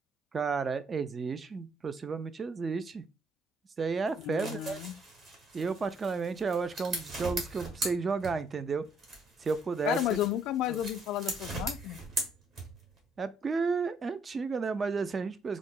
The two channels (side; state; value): both; normal; correlation 0.68